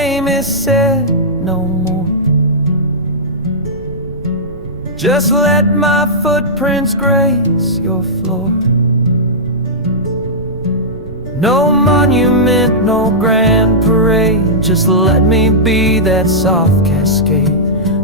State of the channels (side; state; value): right; noise; rumble, 17 dB below the sound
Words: is said no more, just let my footprints grace your floor. No monument, no grand parade, just let me be that soft cascade,